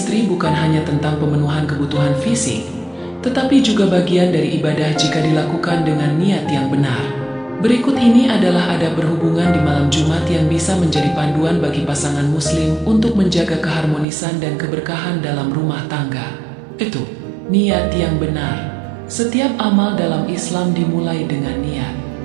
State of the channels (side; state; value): left; drops out; at 14.1 s